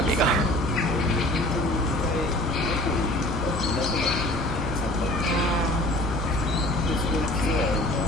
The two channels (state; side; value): normal; both; correlation 0.47